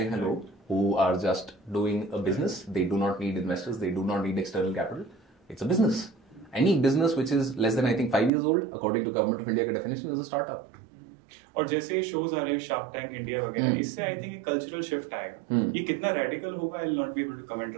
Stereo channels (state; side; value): drops out; left; at 8.3 s